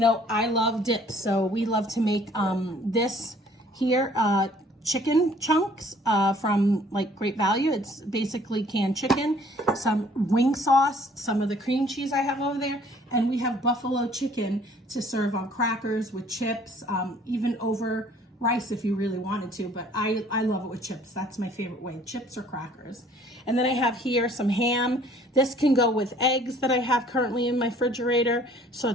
I love dips, so we love to make this here, chicken chunks from like Great Value. It's basically canned chicken, some wing sauce, some of the cream cheese I have over there, and we have buffalo chicken to serve on crackers with chips, even over rice if you really wanted to, but I love it with chips. That's my favorite way, chips or crackers. And then I have here some ham. This can go with eggs that I have currently in my refrigerator,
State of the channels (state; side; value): normal; both; correlation 0.56